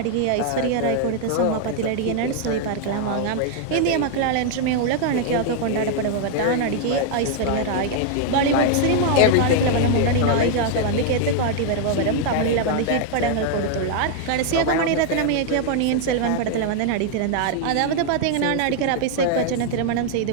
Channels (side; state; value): both; different; correlation 0.00